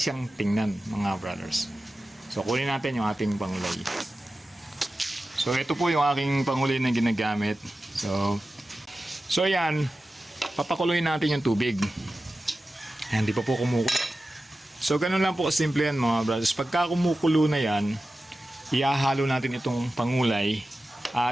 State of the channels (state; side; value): normal; both; correlation 0.94